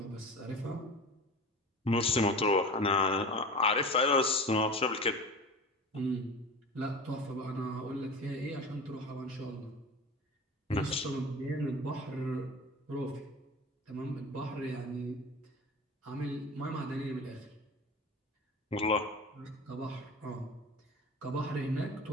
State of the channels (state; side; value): normal; both; correlation 0.33